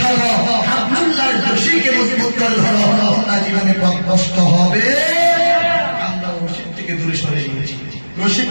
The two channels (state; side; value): inverted; both; correlation -1.00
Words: থাকো, হাবলুল্লাহর রশিকে মজবুত করে ধরো, তোমরা জীবনে পথ কষ্ট হবে। আমরা রশিদ থেকে দূরে সরে গিয়েছি, রশিদ